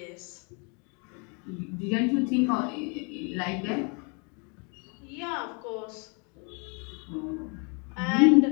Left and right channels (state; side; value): quieter; right; 34.7 dB